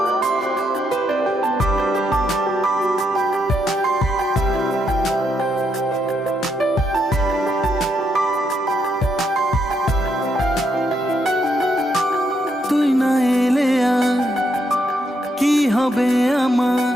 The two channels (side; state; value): both; normal; correlation 0.78